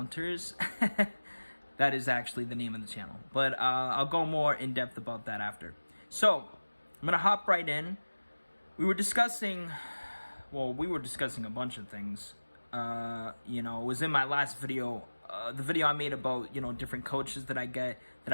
That is actually the name of the channel. But I'll go more in depth about that after. So, I'm going to hop right in. We were discussing a bunch of things. It was in my last video, the video I made about, different coaches that I get that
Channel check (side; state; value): both; inverted; correlation -1.00